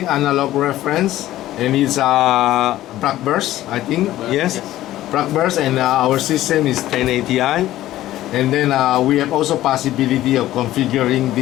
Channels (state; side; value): quieter; right; 14.5 dB